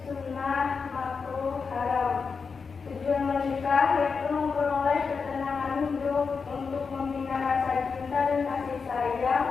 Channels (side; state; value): right; quieter; 5.3 dB